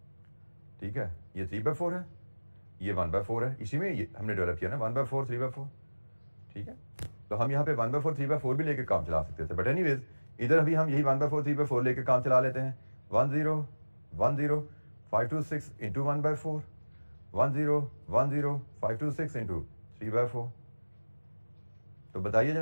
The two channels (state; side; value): inverted; both; correlation -1.00